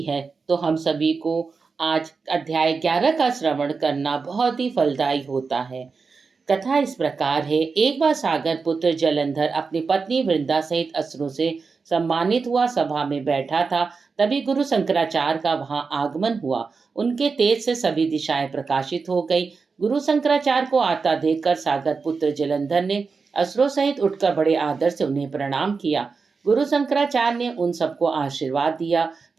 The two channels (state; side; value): quieter; left; 4.8 dB